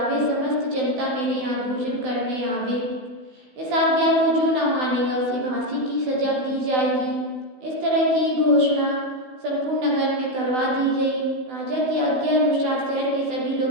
समस्त जनता मेरे यहाँ भोजन करने आवे। इस आज्ञा को जो न मानेगा उसे फांसी की सजा दी जाएगी। इस तरह की घोषणा संपूर्ण नगर में करवा दी गई। राजा की आज्ञा अनुसार शहर के सभी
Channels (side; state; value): left; late; 16 ms